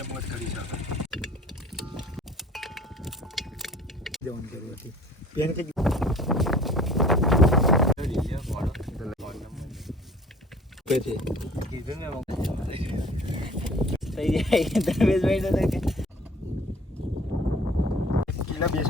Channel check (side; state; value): both; normal; correlation 0.49